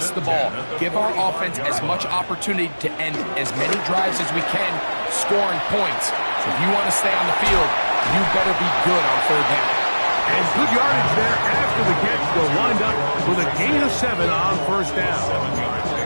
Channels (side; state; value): both; inverted; correlation -1.00